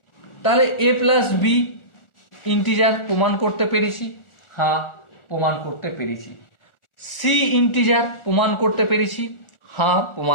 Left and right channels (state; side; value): late; right; 1.4 ms